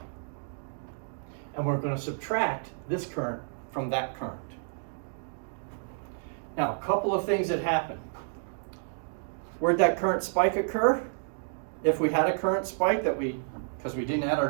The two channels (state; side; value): silent; left; digital silence